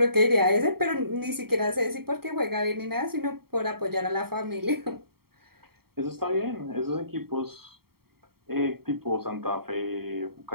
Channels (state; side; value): late; left; 0.95 ms